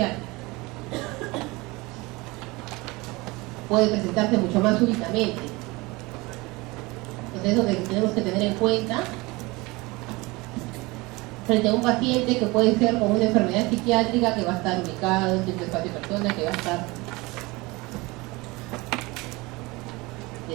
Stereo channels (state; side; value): quieter; left; 23.4 dB